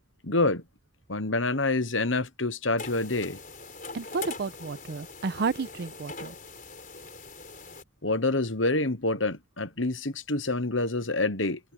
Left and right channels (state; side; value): normal; both; correlation -0.08